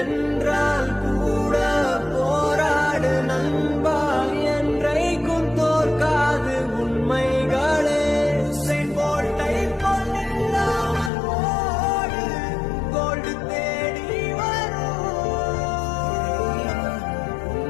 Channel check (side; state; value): right; drops out; at 11.1 s